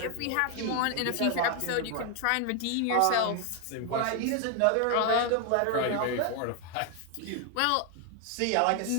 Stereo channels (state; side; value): different; both; correlation 0.01